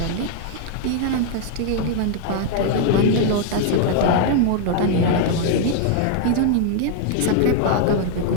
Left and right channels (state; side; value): different; both; correlation 0.00